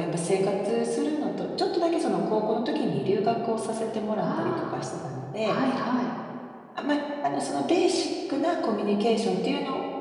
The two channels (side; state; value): both; identical; correlation 1.00